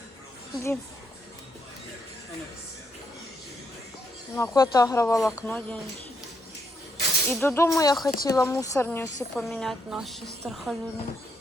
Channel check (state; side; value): normal; both; correlation 0.77